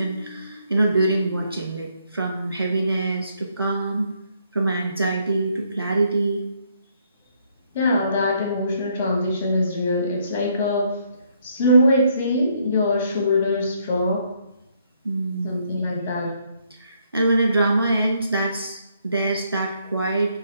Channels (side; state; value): both; inverted; correlation -0.71